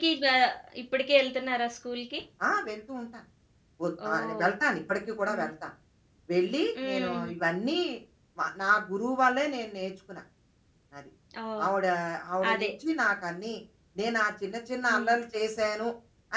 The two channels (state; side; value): identical; both; correlation 1.00